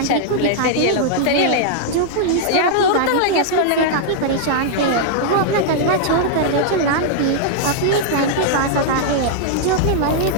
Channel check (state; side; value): different; both; correlation -0.01